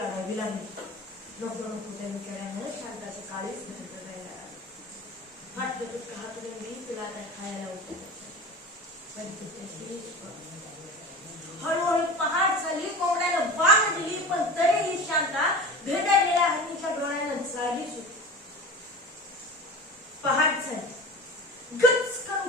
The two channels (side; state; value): both; normal; correlation 0.33